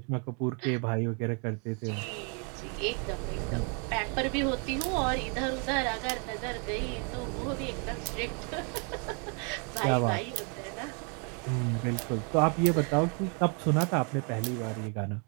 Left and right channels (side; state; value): left; quieter; 37.3 dB